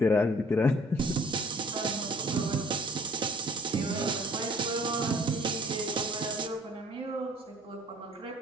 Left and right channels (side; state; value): both; normal; correlation 0.54